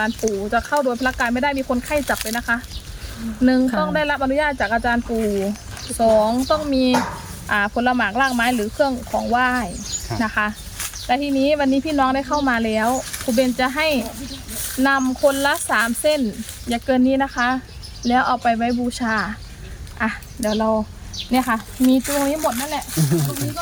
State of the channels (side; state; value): both; identical; correlation 1.00